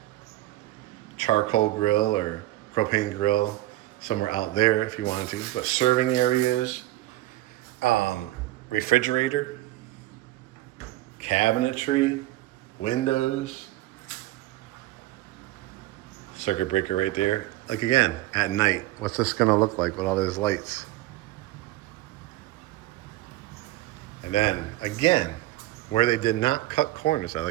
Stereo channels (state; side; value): quieter; left; 16.8 dB